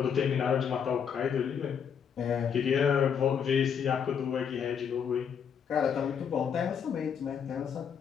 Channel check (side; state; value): right; quieter; 7.5 dB